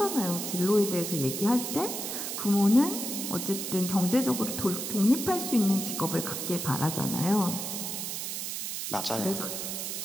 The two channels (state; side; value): noise; right; hiss, 4 dB below the sound